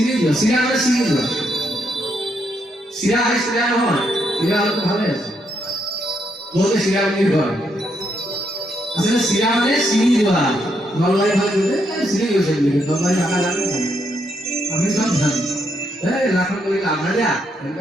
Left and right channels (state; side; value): normal; both; correlation 0.77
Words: সিরা মানে সিরিজ সিরা হয় সিরা নহয় সিরা হলে ভালো আছে বলতে সিরা মানে হয় আসলে সিরা মানে সিরিজ হয় নলবাড়ি ভালো দিতে সিরিজ হয়েছে নলবাড়ি টাকা লাগে আমি সব জানি এই রাখন করে আমরা যা